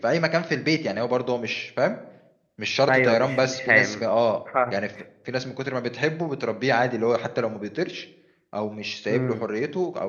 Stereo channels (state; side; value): identical; both; correlation 1.00